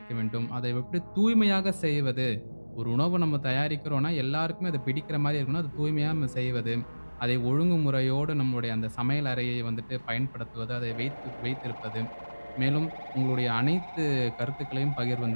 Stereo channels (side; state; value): both; inverted; correlation -1.00